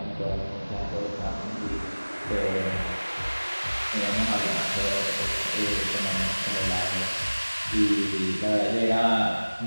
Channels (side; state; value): both; inverted; correlation -1.00